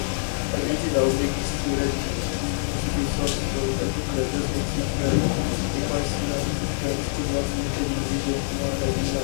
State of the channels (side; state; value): right; silent; digital silence